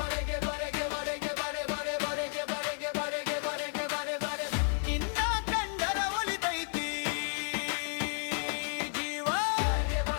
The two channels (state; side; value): silent; right; 56 dB below the other